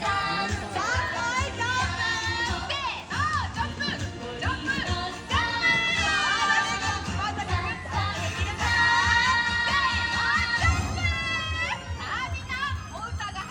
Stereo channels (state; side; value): identical; both; correlation 1.00